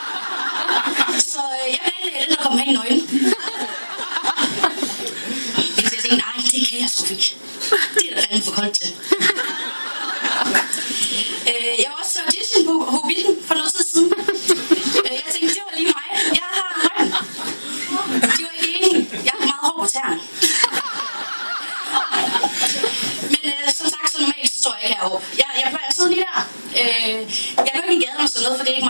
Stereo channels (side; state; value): both; inverted; correlation -1.00